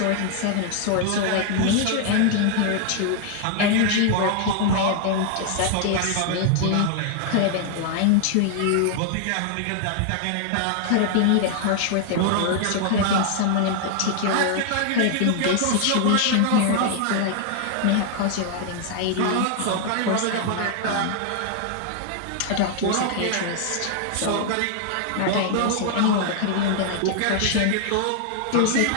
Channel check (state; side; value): different; both; correlation 0.00